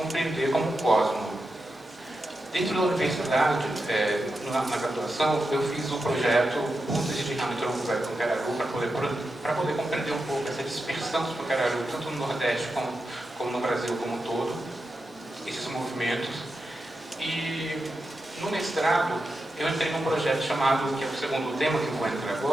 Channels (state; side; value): normal; both; correlation 0.89